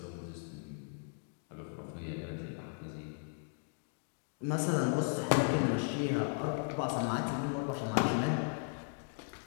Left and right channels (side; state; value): right; silent; 53 dB below the other